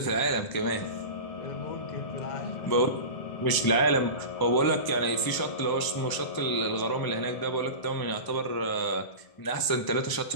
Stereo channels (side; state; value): right; late; 1.0 ms